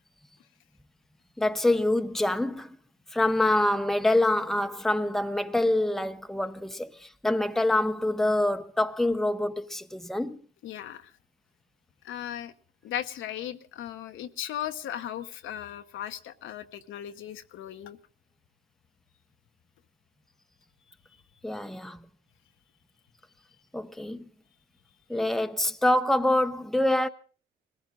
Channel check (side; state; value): both; normal; correlation 0.91